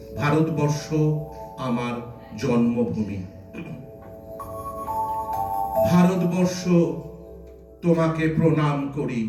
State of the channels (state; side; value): identical; both; correlation 1.00